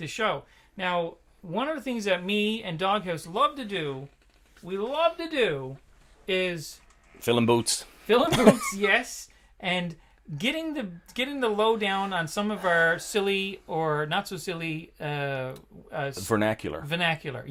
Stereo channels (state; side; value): identical; both; correlation 1.00